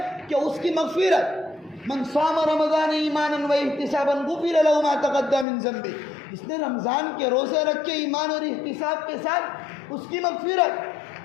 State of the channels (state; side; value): drops out; right; at 5.5 s